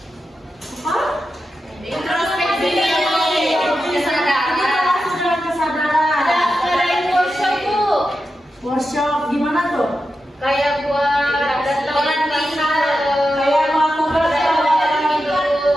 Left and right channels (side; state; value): both; normal; correlation 0.89